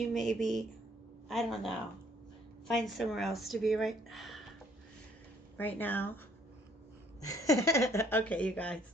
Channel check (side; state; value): both; normal; correlation 0.63